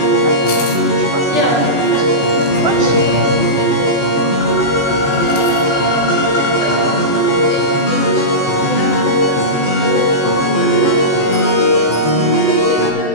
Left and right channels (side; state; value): right; late; 14 ms